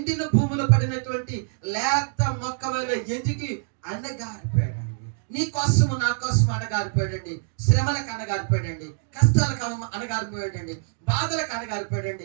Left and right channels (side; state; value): left; silent; digital silence